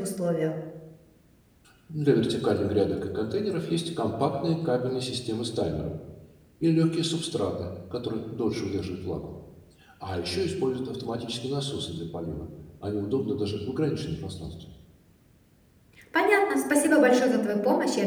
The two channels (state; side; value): identical; both; correlation 1.00